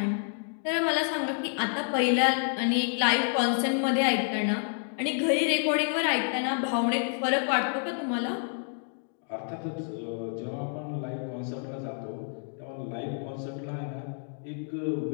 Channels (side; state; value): right; silent; 59 dB below the other